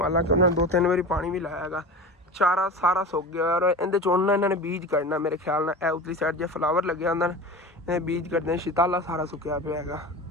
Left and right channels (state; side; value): normal; both; correlation 0.31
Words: ਹਾਲਾਂਕਿ ਉਹਨਾਂ ਨੇ 2-3 ਵਾਰੀ ਪਾਣੀ ਵੀ ਲਾਇਆ ਹੈਗਾ, ਚਾਰਾ ਸਾਰਾ ਸੁੱਕ ਗਿਆ। ਔਰ ਇਹਦੇ 'ਚ ਉਹਨਾਂ ਇਹਨਾਂ ਨੇ ਬੀਜ ਕੱਢਣਾ ਮੇਰੇ ਖਿਆਲ ਨਾਲ, ਇਹ ਉਤਲੀ ਸਾਈਡ ਜੇ ਫਲਾਵਰ ਲੱਗਿਆ ਹੁੰਦਾ ਨਾ, ਇਹ ਬੀਜ ਕੱਢਦੇ, ਸ਼ਿਤਾਲਾ ਸਾਰਾ ਸੁੱਕਿਆ ਪਿਆ ਹੈਗਾ।